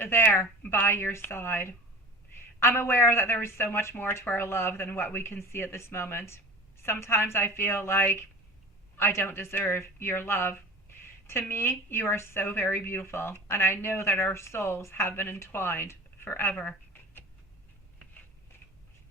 by your side. I'm aware that there is so much more to our love than what we can see at this moment. Sometimes I feel like I don't deserve your love. To me, you are so very beautiful, and I know that our souls have been entwined forever.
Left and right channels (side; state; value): both; normal; correlation 0.38